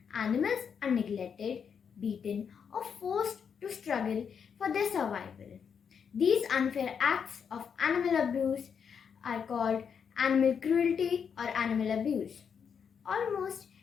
animals are neglected, beaten, or forced to struggle for their survival. These unfair acts of animal abuse are called animal cruelty or animal abuse. Almost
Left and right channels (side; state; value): right; quieter; 7.0 dB